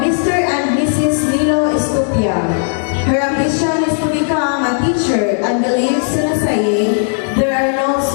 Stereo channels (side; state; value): right; silent; digital silence